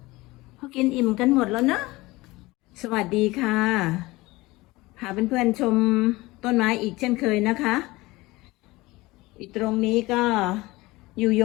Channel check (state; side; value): quieter; right; 20.8 dB